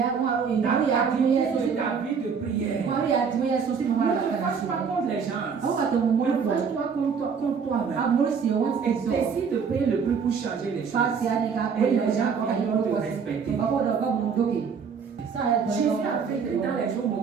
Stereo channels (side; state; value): left; quieter; 6.2 dB